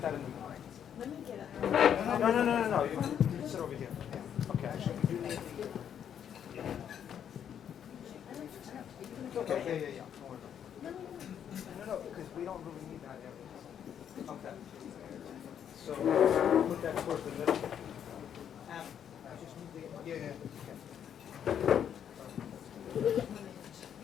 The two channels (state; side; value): quieter; right; 8.9 dB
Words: that in the middle. Let me get it. No. You sit over here. Yeah. Okay. Okay. Yeah. No, because we don't really need that area. Okay. So put that towards the middle. Just move the. Yeah.